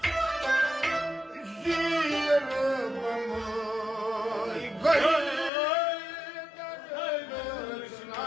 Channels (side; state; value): right; drops out; at 5.5 s